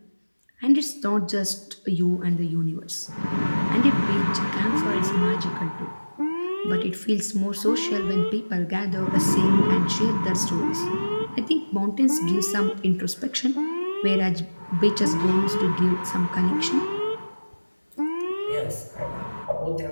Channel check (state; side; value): inverted; both; correlation -1.00